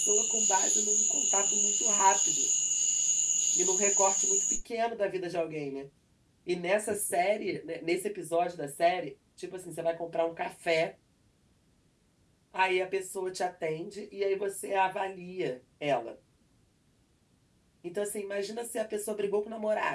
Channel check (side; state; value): both; identical; correlation 1.00